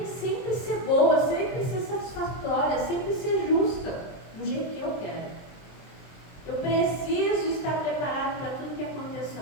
sempre ser boa, sempre ser satisfatória, sempre ser justa, do jeito que eu quero. Eu preciso estar preparado para tudo que aconteça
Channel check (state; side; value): late; right; 23 ms